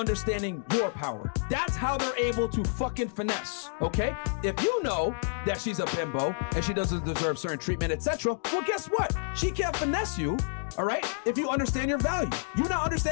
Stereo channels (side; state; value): right; silent; digital silence